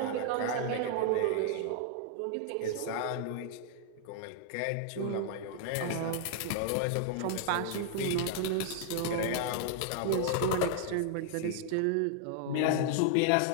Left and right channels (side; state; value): both; different; correlation 0.00